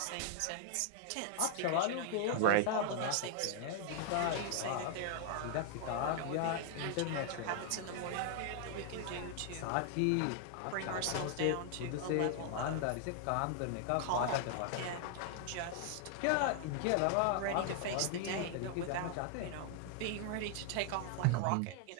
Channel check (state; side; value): different; both; correlation 0.00